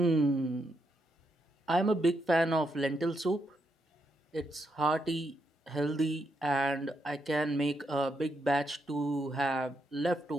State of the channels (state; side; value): normal; both; correlation 0.80